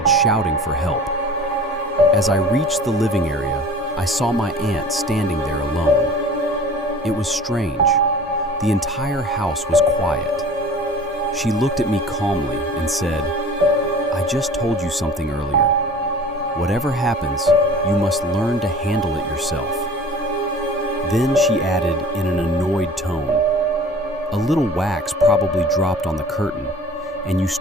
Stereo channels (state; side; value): normal; both; correlation 0.43